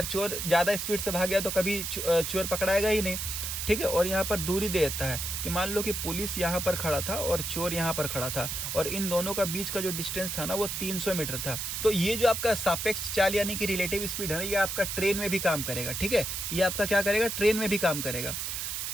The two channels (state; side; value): noise; right; hiss, 3 dB below the sound